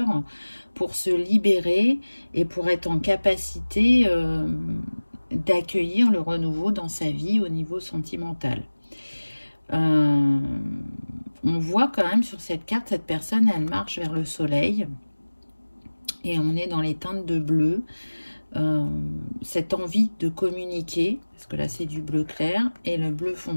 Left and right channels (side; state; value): both; inverted; correlation -1.00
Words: pour se libérer et pour être en capacité d'accueillir le renouveau dans sa vie au niveau sentimental. On voit quand même sur cette carte, cette personne, elle marche vers le soleil et on est dans les teintes de bleu. Cette envie de communiquer, parce que là c'est du bleu clair, et le bleu